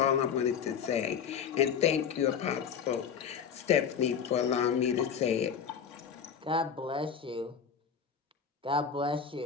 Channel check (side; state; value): right; quieter; 7.3 dB